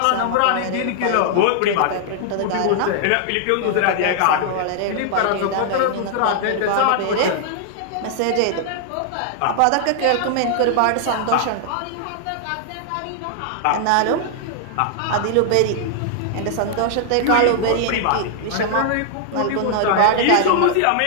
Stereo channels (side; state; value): both; different; correlation -0.01